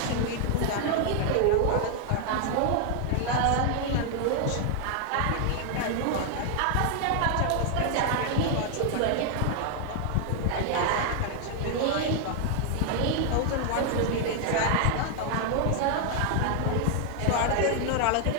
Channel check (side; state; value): both; different; correlation 0.00